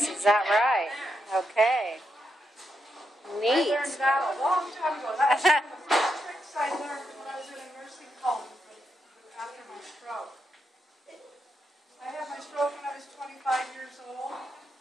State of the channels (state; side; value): normal; both; correlation 0.83